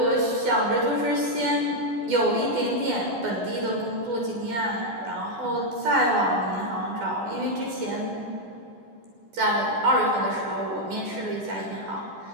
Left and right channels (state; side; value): late; left; 12 ms